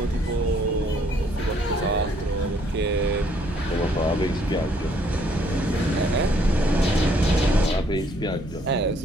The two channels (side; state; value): both; normal; correlation 0.66